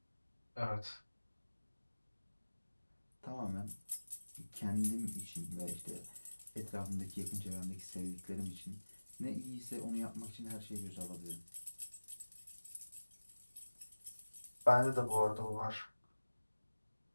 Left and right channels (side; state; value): both; inverted; correlation -1.00